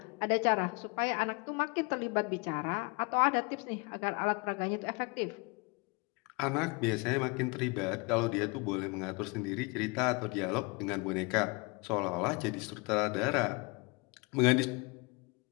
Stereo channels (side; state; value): right; quieter; 28.6 dB